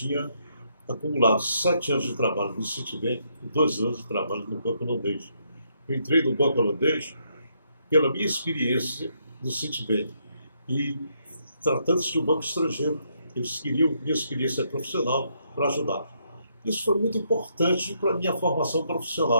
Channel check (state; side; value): inverted; both; correlation -0.75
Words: acumulado 7 anos de trabalho no Citibank e 2 anos de trabalho no Banco Holandês. Eu entrei no Banco Holandês pela minha experiência no Citibank. E tratando-se de um banco estrangeiro, eles queriam minha experiência profissional para ajudar. Isso foi muito importante para a minha formação